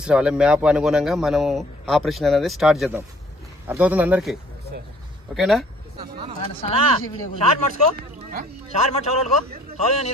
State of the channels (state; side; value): normal; both; correlation 0.58